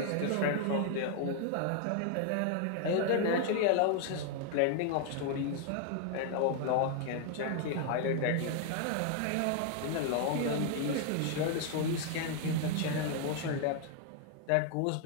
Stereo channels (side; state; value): both; different; correlation 0.00